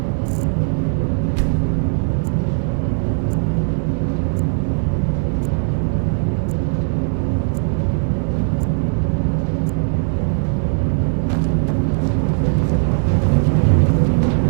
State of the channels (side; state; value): left; silent; 67 dB below the other